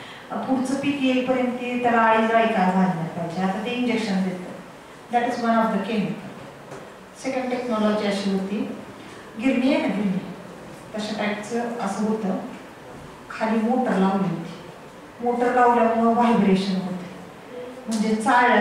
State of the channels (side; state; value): both; identical; correlation 1.00